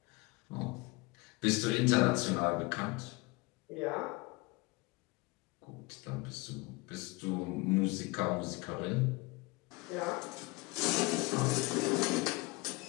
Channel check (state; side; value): quieter; right; 25.1 dB